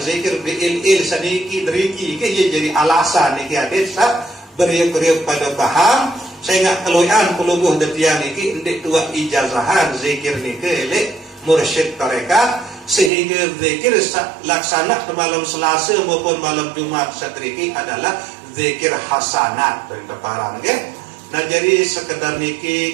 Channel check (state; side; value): drops out; left; at 13.1 s